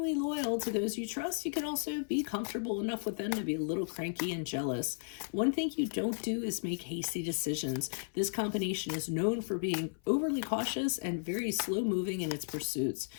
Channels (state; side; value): silent; right; 55 dB below the other